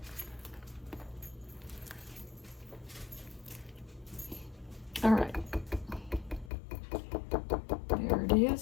All right. There it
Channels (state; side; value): drops out; right; at 6.5 s